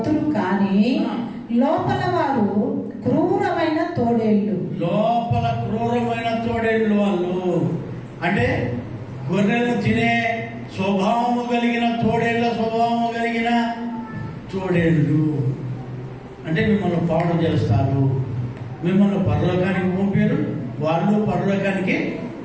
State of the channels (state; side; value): identical; both; correlation 1.00